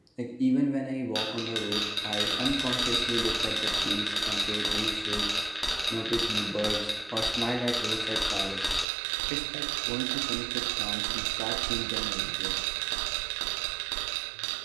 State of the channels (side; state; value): left; drops out; at 8.8 s